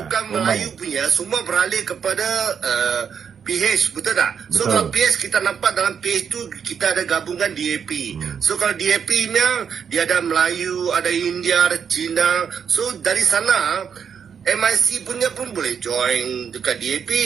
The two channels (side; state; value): left; quieter; 7.2 dB